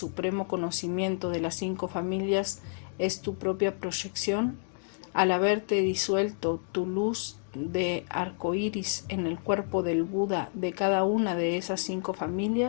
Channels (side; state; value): right; silent; 58 dB below the other